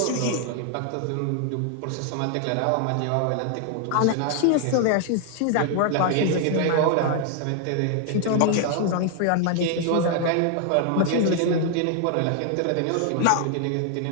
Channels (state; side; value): different; both; correlation 0.00